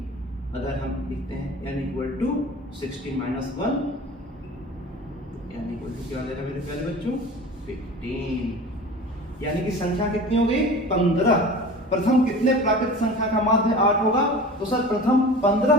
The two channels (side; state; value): both; normal; correlation 0.37